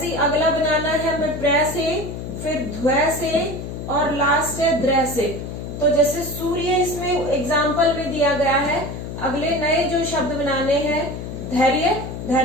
ही अगला बनाना है हमें प्र से, फिर ध्व से, और लास्ट है द्र से। तो जैसे सूर्य इसमें एग्जाम्पल में दिया गया है। अगले नए जो शब्द बनाने हैं, धैर्य,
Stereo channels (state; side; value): noise; left; hum, 8 dB below the sound